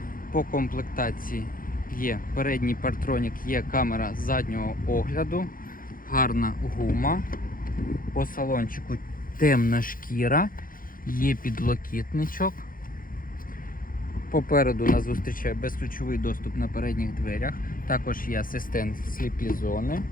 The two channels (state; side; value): late; right; 0.41 ms